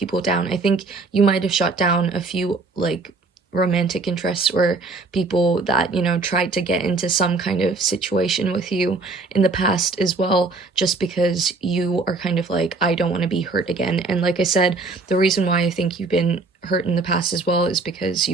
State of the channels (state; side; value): quieter; left; 3.7 dB